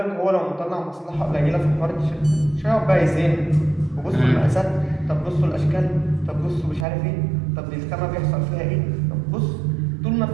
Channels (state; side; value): drops out; left; at 6.9 s